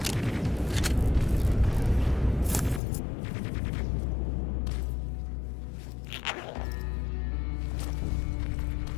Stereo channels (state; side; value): drops out; right; at 2.8 s